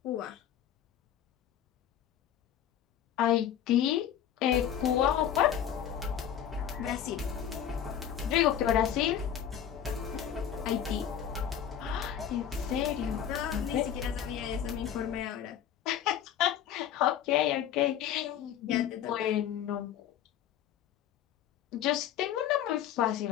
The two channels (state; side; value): quieter; right; 9.7 dB